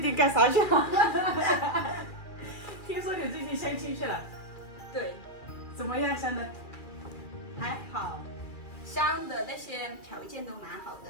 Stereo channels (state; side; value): late; right; 2.4 ms